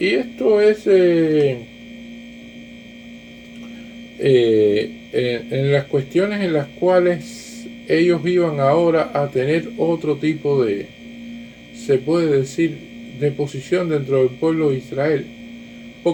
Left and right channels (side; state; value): both; identical; correlation 1.00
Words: es en las cuestiones en las cuales ellos iban ahora a tener otro tipo de, se puede decir, de posición dentro del pueblo de Israel,